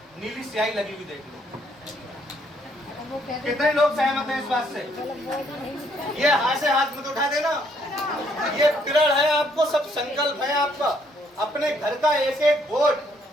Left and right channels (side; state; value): both; normal; correlation 0.69